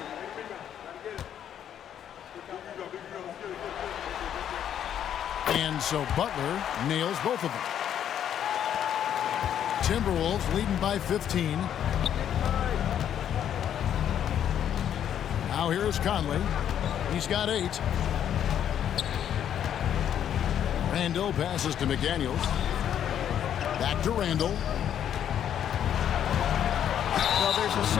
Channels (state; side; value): quieter; right; 9.7 dB